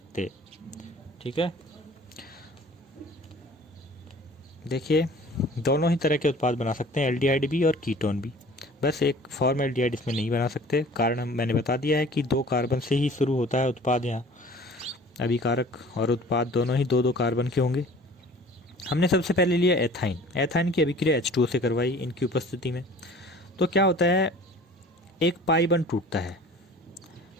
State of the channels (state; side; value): normal; both; correlation 0.47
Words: ठीक है, देखिए दोनों ही तरह के उत्पाद बना सकते हैं, एल्डिहाइड भी और कीटोन भी, बस एक फॉर्मेल्डिहाइड इसमें नहीं बना सकते। कारण मैंने बता दिया है कि 2 कार्बन से ही शुरू होता है उत्पाद, यहाँ अभिकारक और उत्पाद दोनों ही 2-2 कार्बन के होंगे। हमने सबसे पहले लिया एथाइन। एथाइन की अभिक्रिया H2O से करवाई इनकी उपस्थिति में, तो क्या होता है, एक पाई बंध टूटता है,